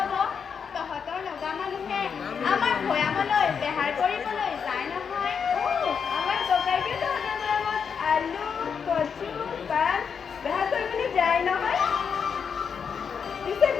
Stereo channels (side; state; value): right; quieter; 6.6 dB